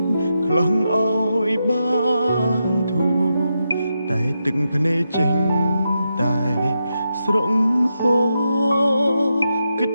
ខ្លាំងឲ្យបានធូរតែទឹកភ្នែកចេញតែស្រង់ហូរគិត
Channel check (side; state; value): both; inverted; correlation -0.86